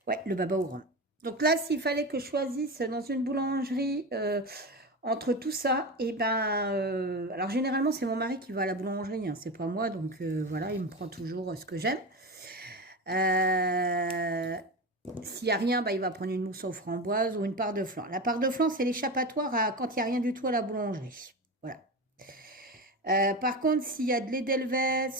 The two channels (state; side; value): normal; both; correlation 0.23